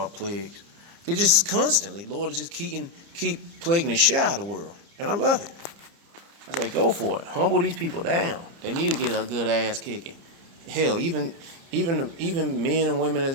plagues. It's just constantly, Lord is just keep plaguing the shit out of the world. And I love it. I say, go for it. Humble these people down. They need to get a good ass kicking. Hell, even men and women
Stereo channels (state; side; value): late; left; 30 ms